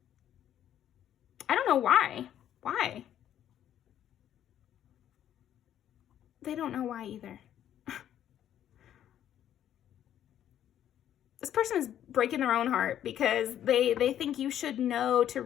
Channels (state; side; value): quieter; right; 10.8 dB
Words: I don't know why. Why? They don't know why either. This person is breaking their own heart because they think you should know to